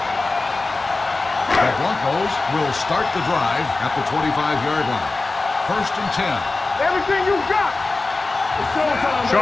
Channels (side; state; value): right; quieter; 3.5 dB